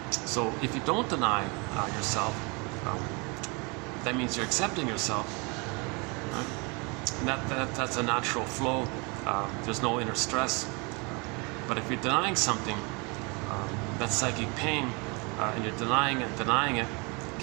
So if you don't deny yourself, that means you're accepting yourself. Right? And that's a natural flow. There's no inner stress. But if you're denying something, that's psychic pain, and you're denying it,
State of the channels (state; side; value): quieter; left; 30.0 dB